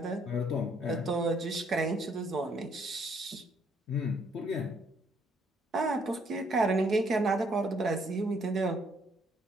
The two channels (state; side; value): normal; both; correlation 0.67